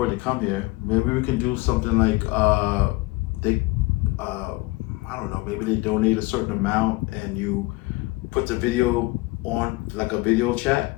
to come here, maybe we can do something like I don't know, maybe they donate a certain amount and you put the video on like a video chat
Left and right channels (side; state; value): right; quieter; 22.2 dB